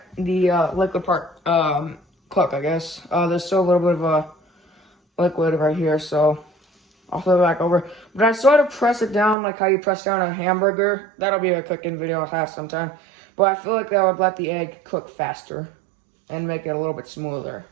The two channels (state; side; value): drops out; left; at 9.3 s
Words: the liquid part cook, I guess. There's still a little bit of a liquid right here, so I'll flip it back over. But I sort of press it down like how you press down a hamburger. That'll be a cooking video I'll have sometime. But I feel like that would let the egg cook faster and make it a little bit smoother.